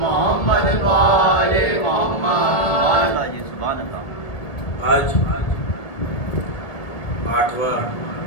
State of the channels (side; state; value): right; late; 1.6 ms